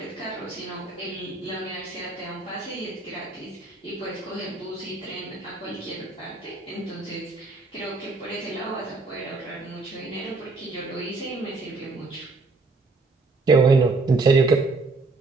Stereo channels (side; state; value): left; quieter; 3.6 dB